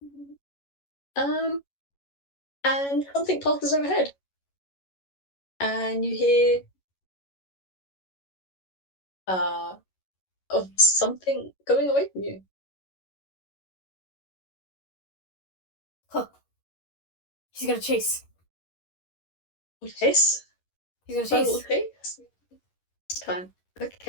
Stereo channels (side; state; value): right; late; 11 ms